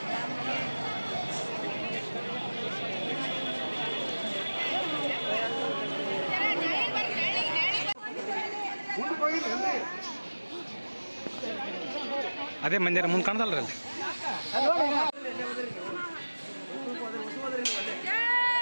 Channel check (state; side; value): inverted; both; correlation -1.00